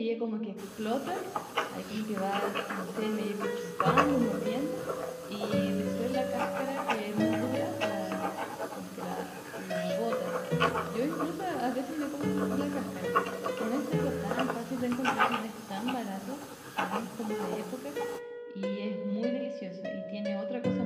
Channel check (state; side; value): identical; both; correlation 1.00